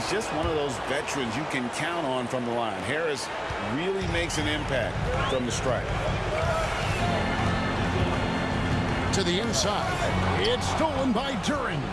just one of those veterans you can count on from the line. Harris really makes an impact from the stripe. To the inside. It's stolen by Duren.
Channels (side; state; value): both; identical; correlation 1.00